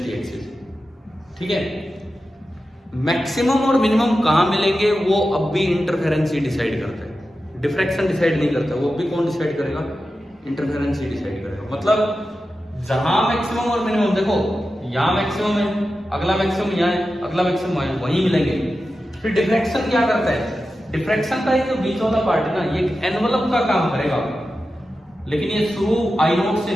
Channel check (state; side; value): normal; both; correlation 0.92